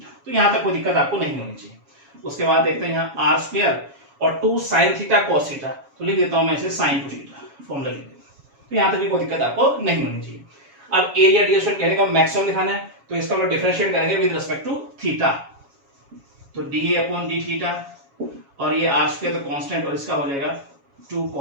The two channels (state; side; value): late; left; 7.2 ms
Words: तो यहाँ तक कोई दिक्कत आपको नहीं होनी चाहिए। उसके बाद देखते हैं यहाँ r स्क्वायर और 2 sin थीटा cos थीटा, तो लिख देता हूँ मैं इसे sin 2 थीटा, फॉर्मूला लिख देता हूँ। तो यहाँ तक भी कोई दिक्कत आपको नहीं होनी चाहिए। अब एरिया डिस्टेंस कहने का मैक्सिमम दिखाना है, तो इसका हम डिफरेंशिएट करेंगे विद रिस्पेक्ट टू थीटा, तो dA अपॉन d थीटा, और ये r स्क्वायर तो कांस्टेंट, और इसका हो जाएगा 2